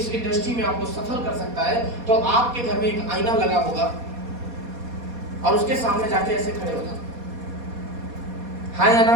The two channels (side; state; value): left; late; 4.2 ms